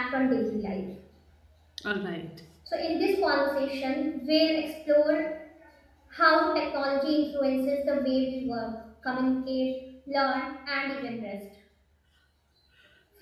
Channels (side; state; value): both; identical; correlation 1.00